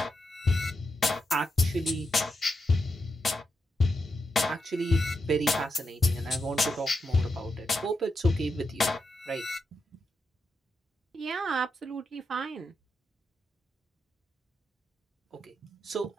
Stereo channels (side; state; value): both; normal; correlation 0.86